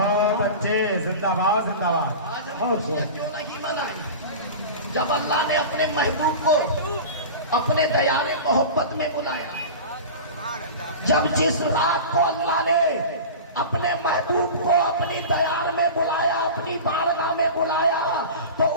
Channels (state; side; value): inverted; both; correlation -0.32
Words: अच्छे, जिंदाबाद, जिंदाबाद। क्यों नहीं बनाए? जब अल्लाह ने अपने महबूब को अपने दयारे मोहब्बत में बुलाया, जब जिस रात को अल्लाह ने अपने महबूब को अपनी दयार में बुलाया, अपनी बारगाह में बुलाया, तो